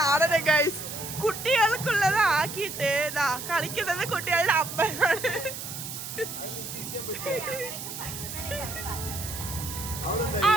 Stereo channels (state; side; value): noise; right; hiss, 8 dB below the sound